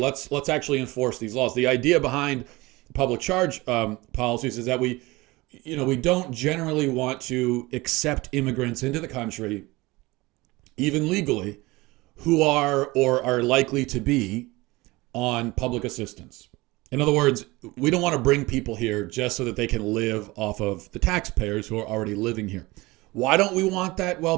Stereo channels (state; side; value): quieter; left; 21.6 dB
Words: actually enforce these laws. The idea behind public charge policies is that we don't generally want to accept immigrants into the country, even legally, who are or are likely to be on public assistance. In other words, we don't want to bring people here just so that they can live off of the taxpayers who are already living here. Why don't we want that? Well,